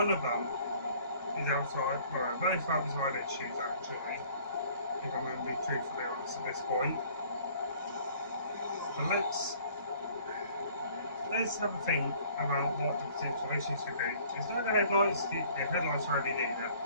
of them is outside, well both outside issues actually, if I'm going to be truthfully honest at this point. But let's have a think about what the potential issues could be. It's not the headlights, the headlights are LED, they're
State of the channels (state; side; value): inverted; both; correlation -0.55